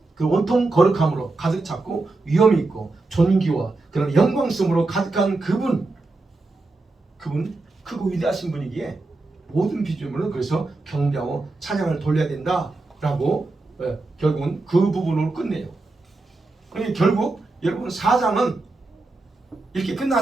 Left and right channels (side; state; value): left; quieter; 3.3 dB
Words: 그 온통 거룩함으로 가득 찼고 위엄이 있고 존귀와 그런 영광스러움으로 가득한 그분 크고 위대하신 분이기에 모든 비주물은 그래서 경배하고 찬양을 돌려야 된다라고 결국은 그 부분으로 끝내요. 그러니까 결국 여러분 4장은 이렇게